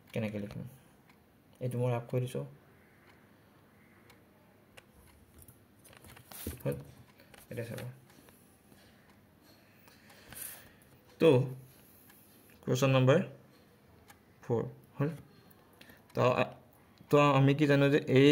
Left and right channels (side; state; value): both; identical; correlation 1.00